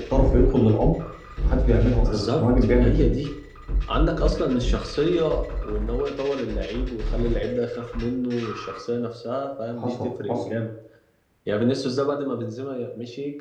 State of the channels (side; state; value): both; identical; correlation 1.00